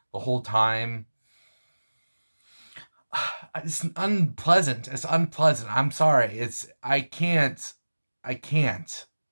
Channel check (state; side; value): inverted; both; correlation -1.00